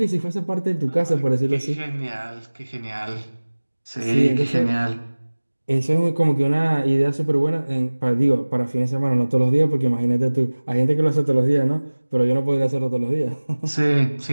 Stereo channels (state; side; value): inverted; both; correlation -1.00